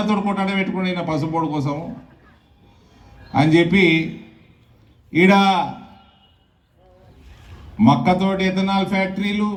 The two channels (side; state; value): both; identical; correlation 1.00